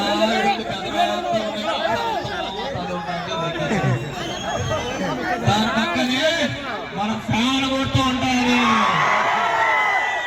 దాని పక్కనే మన ఫ్యాన్ కొడుతూ ఉంటుంది.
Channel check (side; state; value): both; identical; correlation 1.00